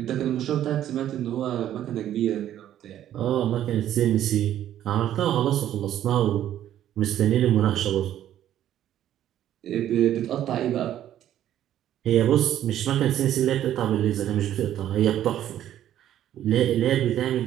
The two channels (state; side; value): quieter; left; 11.6 dB